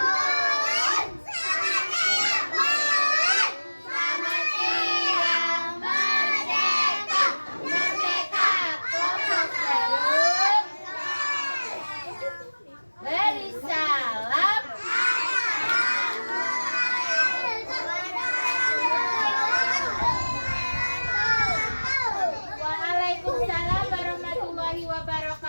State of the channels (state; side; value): inverted; both; correlation -1.00